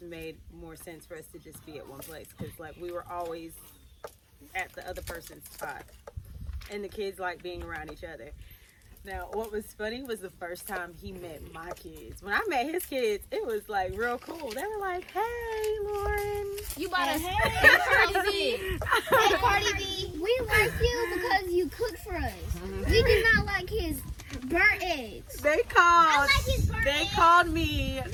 made more sense for us to just be at one place, because like we were always at the other person's spot, and the kids like being around each other. Now, what was funny was the first time he met my kids. When I met his kids, it was like real cool. They were like, "Hey, Lauren." You bought us Cardi B. Hey, Cardi B. We like you because you cook for us. We do not like his burnt eggs. They called me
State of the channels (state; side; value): identical; both; correlation 1.00